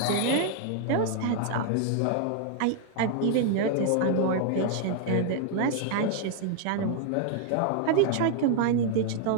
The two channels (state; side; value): different; both; correlation 0.00